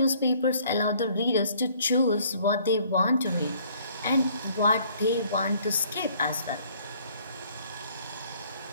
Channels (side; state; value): both; inverted; correlation -0.60